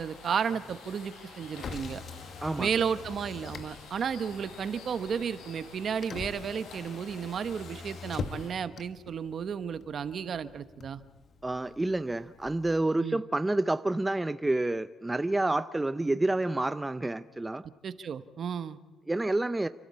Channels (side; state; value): left; quieter; 3.1 dB